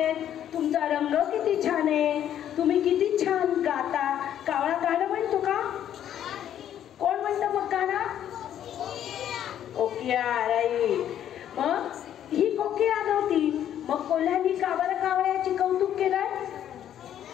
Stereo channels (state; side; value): quieter; right; 10.5 dB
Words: तुमचा रंग किती छान आहे, तुम्ही किती छान गाता. कावळा गाणं म्हणतो का? कोण म्हणतं मग गाणं? कोकिळा. राईट. मग ही कोकिळा नव्हती, मग कोल्ह्यानी का बरं कावळ्याची कौतुक केलं?